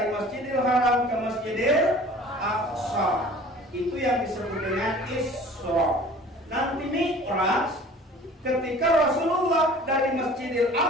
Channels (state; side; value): normal; both; correlation 0.46